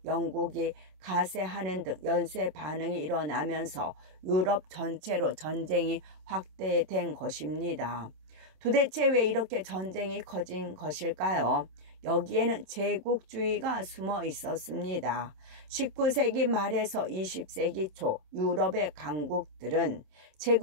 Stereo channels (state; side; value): late; left; 27 ms